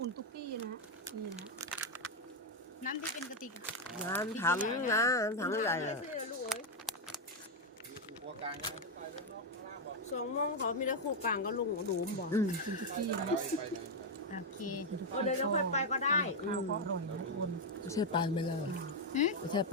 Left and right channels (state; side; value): normal; both; correlation 0.02